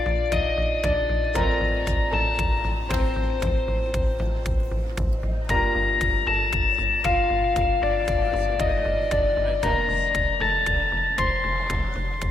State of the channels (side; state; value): both; normal; correlation 0.84